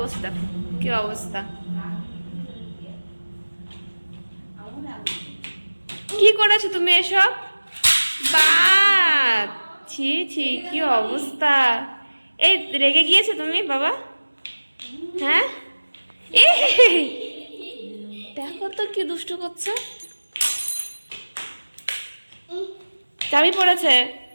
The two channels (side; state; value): both; inverted; correlation -1.00